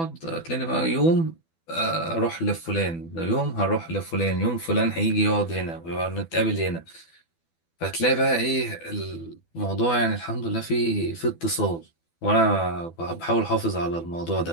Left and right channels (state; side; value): late; right; 12 ms